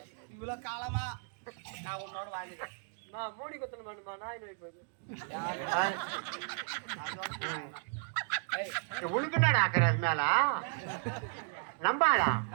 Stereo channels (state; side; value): silent; left; 55 dB below the other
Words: இவ்வளவு காலமா நான் உன்னோட வாழ்ந்துட்டேன் நான் மூடி கொத்தணும் வேணுமா நாய் நோய் போகுது உனக்குன்னா ஆக்குற அது மேல நம்பாளா